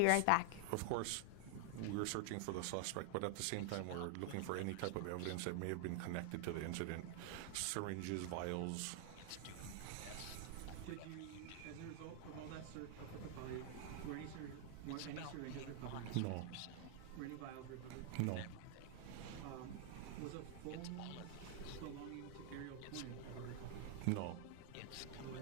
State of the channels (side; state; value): both; different; correlation 0.00